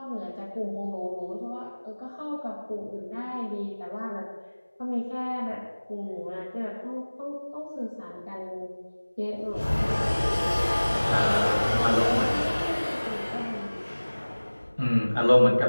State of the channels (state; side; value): inverted; both; correlation -1.00